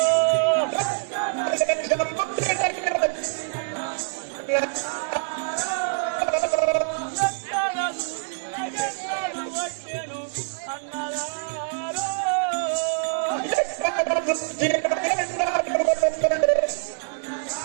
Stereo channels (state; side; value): silent; left; digital silence